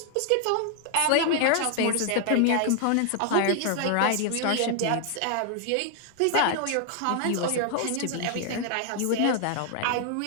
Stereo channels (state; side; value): different; both; correlation 0.00